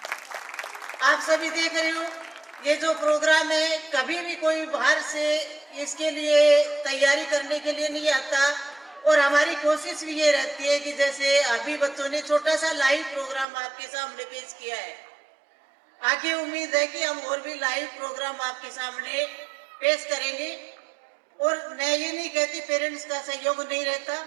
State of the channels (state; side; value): drops out; left; at 13.5 s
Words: आप सभी देख रहे हो ये जो प्रोग्राम है, कभी भी कोई बाहर से इसके लिए तैयारी करने के लिए नहीं आता, और हमारी कोशिश भी ये रहती है कि जैसे अभी बच्चों ने छोटा सा लाइव प्रोग्राम आपके सामने पेश किया है, आगे उम्मीद है कि हम और भी लाइव प्रोग्राम आपके सामने पेश करेंगे। और मैं ये नहीं कहती पेरेंट्स का सहयोग नहीं रहता,